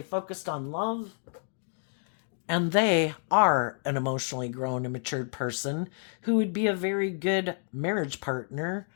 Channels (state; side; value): silent; right; 58 dB below the other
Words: focused on love. And they are an emotionally grown and matured person who would be a very good marriage partner,